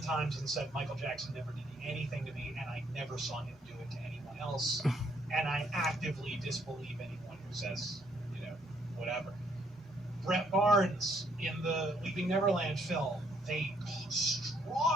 and said Michael Jackson never did anything to me, and I never saw him do it to anyone else, and I actively disbelieve anyone who says, whatever. Brett Barnes in the Leaving Neverland film, they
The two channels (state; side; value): normal; both; correlation 0.68